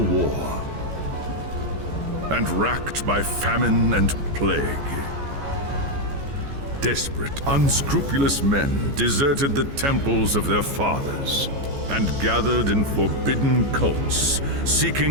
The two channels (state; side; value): late; left; 14 ms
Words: war, and racked by famine and plague. Desperate, unscrupulous men deserted the temples of their fathers and gathered in forbidden cults,